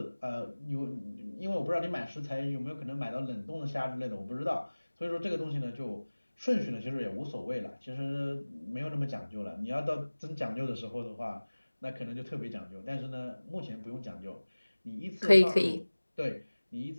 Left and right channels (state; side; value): inverted; both; correlation -1.00